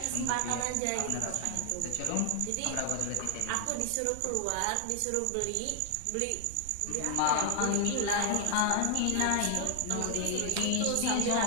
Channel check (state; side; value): different; both; correlation 0.00